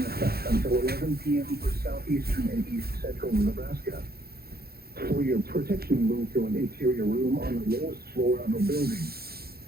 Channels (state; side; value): late; left; 0.45 ms